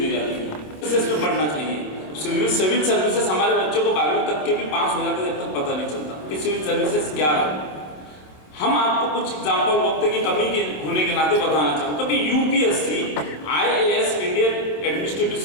जाती है। इसमें पढ़ना चाहिए। सिविल सर्विसेज हमारे बच्चों को 12वीं तक के भी पास हो जाते, जब तक पता नहीं चलता कि सिविल सर्विसेज क्या है। हम आपको कुछ एग्जाम्पल वक्त की कमी के होने के नाते बताना चाहूँगा कि UPSC IAS Indian administrative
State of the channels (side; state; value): right; late; 26 ms